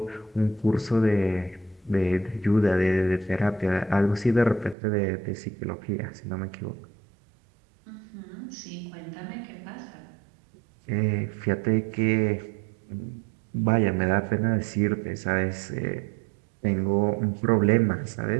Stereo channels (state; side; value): drops out; left; at 4.8 s